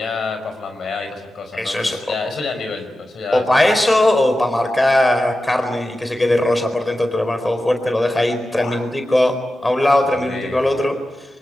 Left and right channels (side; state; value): both; normal; correlation 0.93